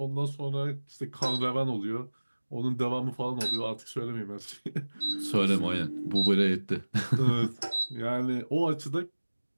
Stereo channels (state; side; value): inverted; both; correlation -1.00